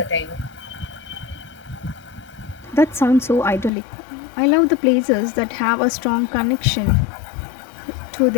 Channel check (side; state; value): right; drops out; at 3.7 s